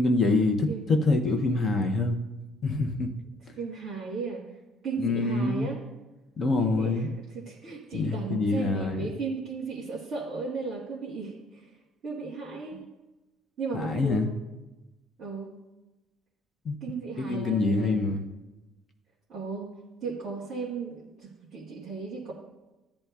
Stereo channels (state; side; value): normal; both; correlation 0.61